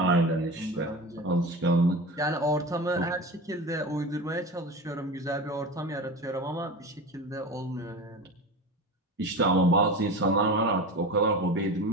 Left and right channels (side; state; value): both; normal; correlation 0.29